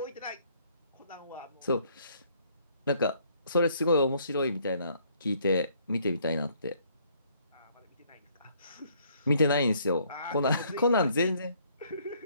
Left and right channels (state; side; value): inverted; both; correlation -0.64